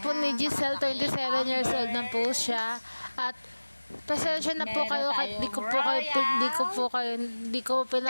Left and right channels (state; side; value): inverted; both; correlation -1.00